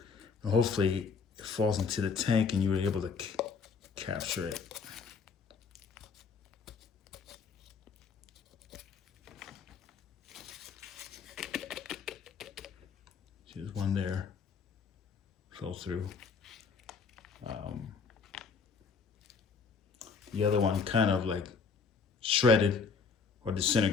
And hopefully it falls into the tank and you were able to capture it. There's one there. Fell through. The other one kind of like shredded or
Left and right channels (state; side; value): quieter; right; 5.3 dB